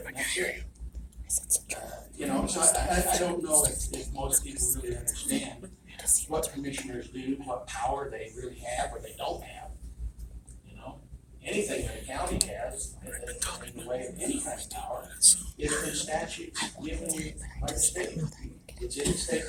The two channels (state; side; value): identical; both; correlation 1.00